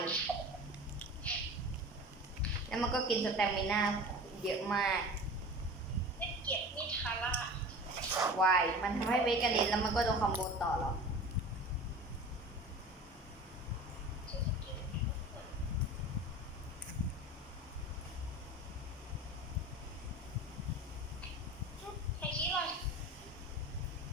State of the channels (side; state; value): both; normal; correlation 0.37